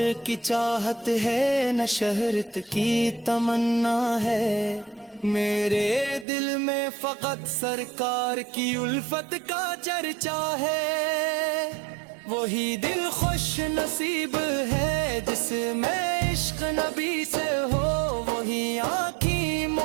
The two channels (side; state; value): left; drops out; at 6.2 s